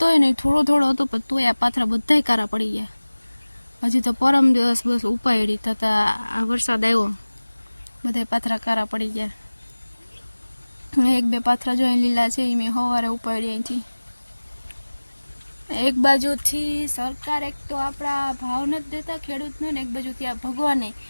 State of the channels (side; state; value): both; inverted; correlation -1.00